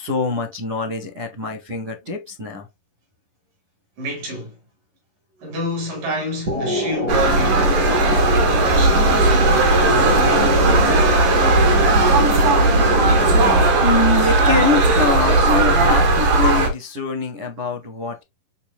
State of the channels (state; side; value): late; left; 11 ms